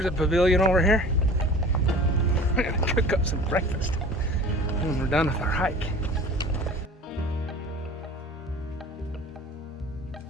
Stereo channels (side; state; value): both; normal; correlation 0.42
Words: a pavilion over here. We're gonna cook up some breakfast when we're done with our hike.